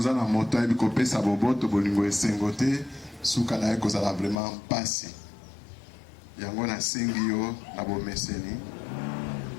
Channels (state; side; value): drops out; right; at 4.4 s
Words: na moto ayebi kopesa boboto bolingo esengo te, suka na ye kozala vraiment pasi. Yango nasengi yo na bomeseni.